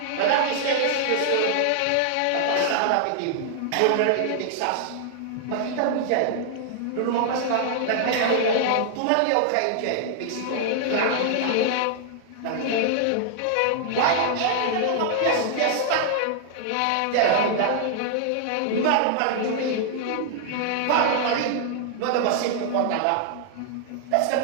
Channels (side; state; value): both; different; correlation -0.01